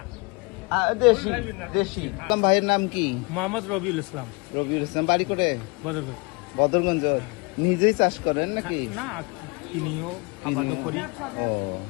দেশি দেশি। ভাইয়ের নাম কি? মোহাম্মদ রবিউল ইসলাম। রবিউল ইসলাম। বাড়ি করে বদরগঞ্জ। বদরগঞ্জ। নিজেই চাষ করেন নাকি? না, কিনিও আবাদও করি। ও,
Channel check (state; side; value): quieter; right; 29.4 dB